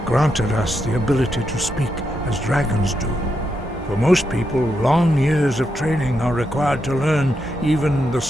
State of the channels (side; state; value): both; normal; correlation 0.83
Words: granted us the ability to speak as dragons do. For most people, long years of training are required to learn even the